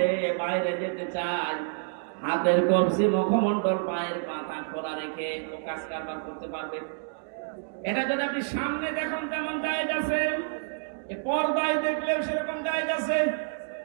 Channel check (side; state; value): left; silent; digital silence